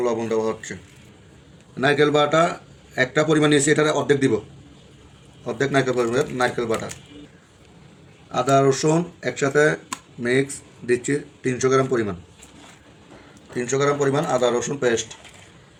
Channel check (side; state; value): both; identical; correlation 1.00